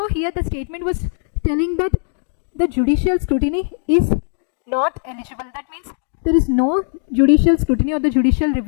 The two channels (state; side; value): silent; right; digital silence